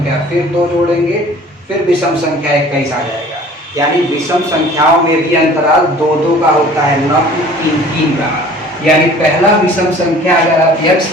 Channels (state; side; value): normal; both; correlation 0.48